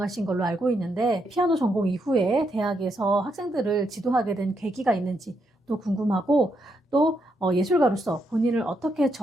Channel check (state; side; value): normal; both; correlation 0.79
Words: 걸로 알고 있는데 피아노 전공 이후에 대학에서 학생들을 지도하게 된 계기가 있는지 또 궁금하고 또 예술가로서 본인을 어떻게